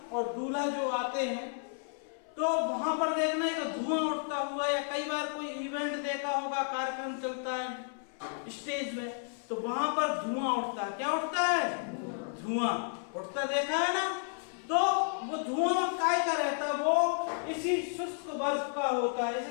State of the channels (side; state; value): right; silent; 56 dB below the other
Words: और दूल्हा जो आते हैं, तो वहां पर देखना एक धुआं उठता हुआ, या कई बार कोई इवेंट देखा होगा, कार्यक्रम चलता है स्टेज में, तो वहां पर धुआं उठता है। क्या उठता है? धुआं उठता देखा है ना? तो वो धुआं काय का रहता है? वो इसी शुष्क बर्फ का होता है। इसे